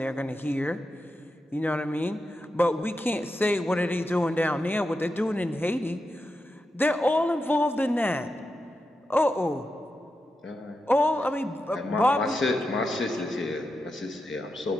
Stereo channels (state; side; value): normal; both; correlation 0.88